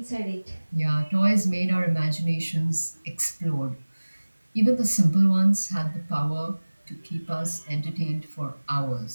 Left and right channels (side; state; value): both; inverted; correlation -1.00